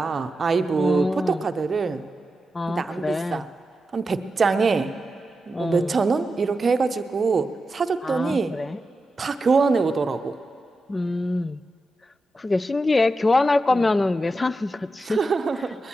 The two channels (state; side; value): normal; both; correlation 0.90